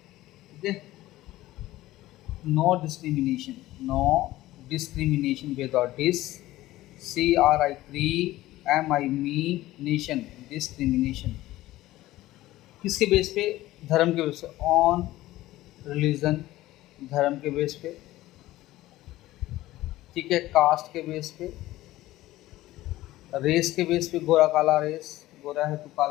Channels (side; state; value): right; quieter; 16.4 dB